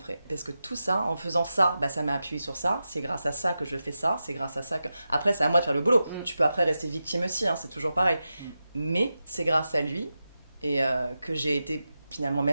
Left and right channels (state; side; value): inverted; both; correlation -0.91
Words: Parce que tout ça, en faisant ça, bah, ça m'a appuyé sur ça. C'est grâce à ça que je fais ça. C'est grâce à ça que... Après, c'est à moi de faire le boulot. Tu peux après rester victime aussi, hein, c'est toujours pareil. Mais c'est grâce à lui et que j'ai été finalement